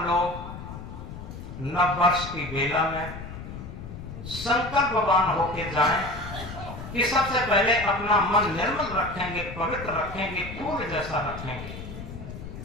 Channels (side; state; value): left; noise; rumble, 10 dB below the sound